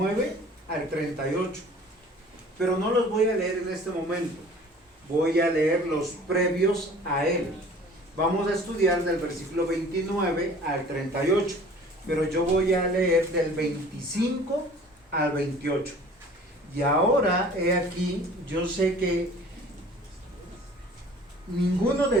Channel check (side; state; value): both; normal; correlation 0.48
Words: al 38. Pero no los voy a leer en este momento. Voy a leer los previos a él. Vamos a estudiar del versículo 29 al 38. Pero yo voy a leer del 25 al 28. Y ahora, he aquí, yo sé que ninguno de